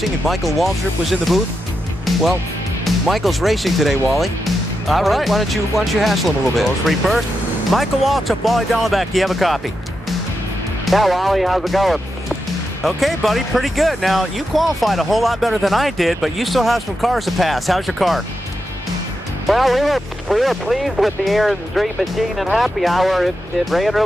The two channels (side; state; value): both; normal; correlation 0.87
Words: and Michael Waltrip was in the booth? Well, Michael's racing today, Wally. All right. Why don't you hassle him a little bit? Those three first. Michael Waltrip, Wally Dallenbach, do you have a copy? Yeah, Wally, how's it going? Okay, buddy, pretty good. Now, you qualified a whole lot better than I did, but you still have some cars to pass. How's your car? Well, we were pleased with the Aaron's Dream Machine and Happy Hour. It ran